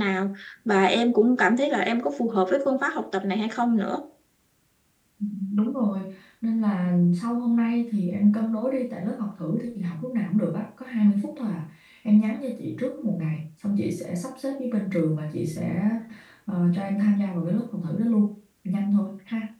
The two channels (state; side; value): identical; both; correlation 1.00